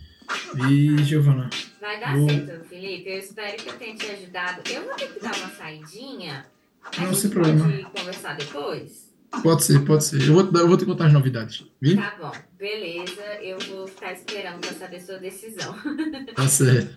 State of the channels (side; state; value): both; identical; correlation 1.00